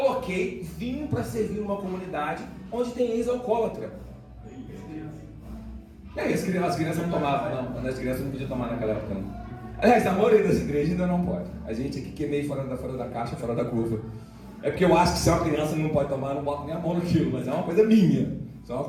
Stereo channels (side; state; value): both; identical; correlation 1.00